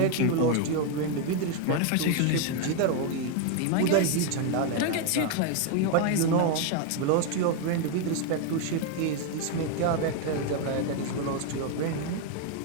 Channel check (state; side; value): different; both; correlation 0.01